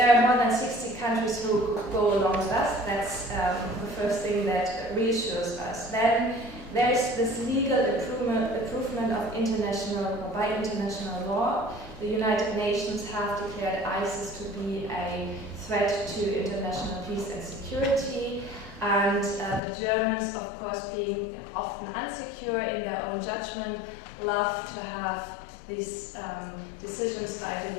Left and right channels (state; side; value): drops out; right; at 19.6 s